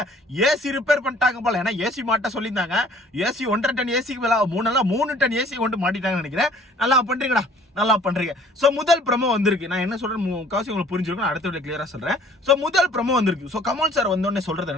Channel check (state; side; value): normal; both; correlation 0.54